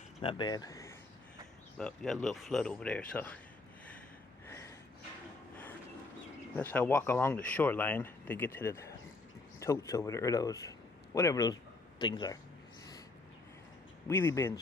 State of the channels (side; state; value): right; quieter; 3.4 dB